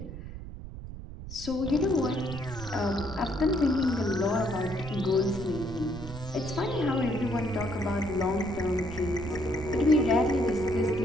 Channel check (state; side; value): noise; right; rumble, 11 dB below the sound